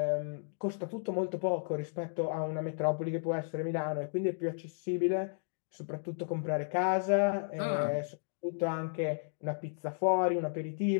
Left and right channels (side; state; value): right; silent; digital silence